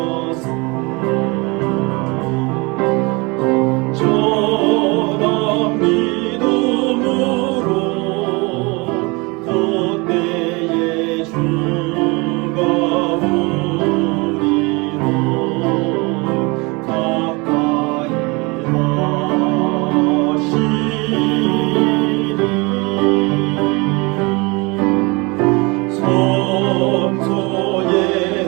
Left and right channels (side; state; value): left; quieter; 26.9 dB